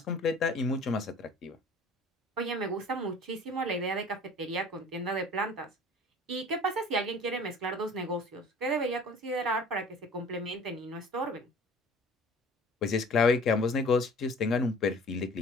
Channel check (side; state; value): both; normal; correlation 0.47